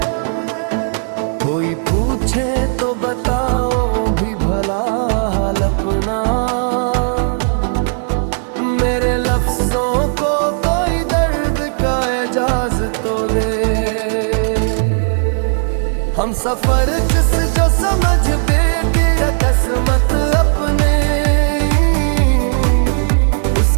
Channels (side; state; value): left; silent; 69 dB below the other